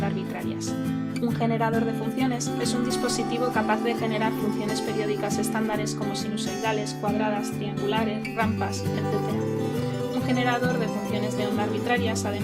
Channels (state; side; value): identical; both; correlation 1.00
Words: arbitrarias. Un generador de funciones es un dispositivo capaz de generar funciones periódicas estándares como sinusoidales, cuadradas, triangulares, rampas, etc. Un generador de funciones de onda arbitrarias,